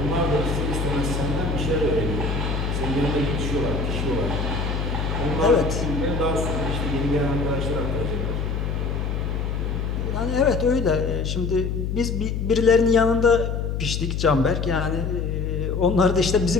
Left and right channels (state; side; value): noise; left; hum, 1 dB below the sound